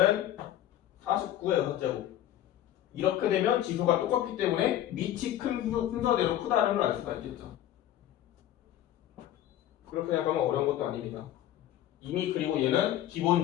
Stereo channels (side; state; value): right; quieter; 12.4 dB